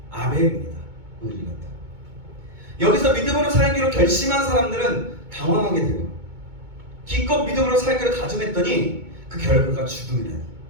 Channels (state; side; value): late; left; 2.2 ms